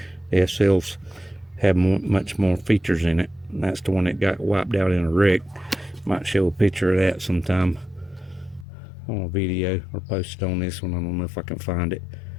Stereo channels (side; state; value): right; drops out; at 8.7 s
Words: The SLs have much more features in it. And that's the one that got wiped out in a wreck. Might show a picture of that sometime on a video or post it on this one. I don't know if I can find it.